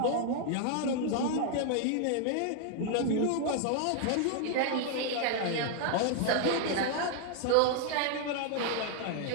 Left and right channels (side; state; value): both; different; correlation 0.00